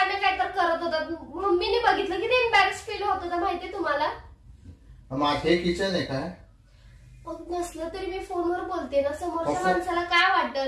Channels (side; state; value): both; identical; correlation 1.00